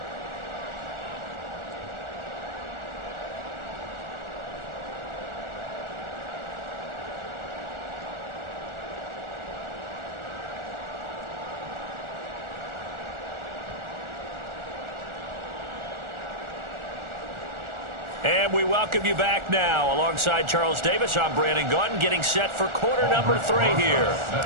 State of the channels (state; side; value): late; left; 1.4 ms